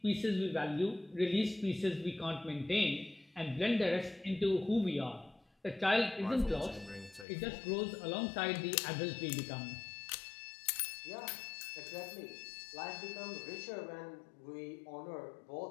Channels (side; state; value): right; drops out; at 7.2 s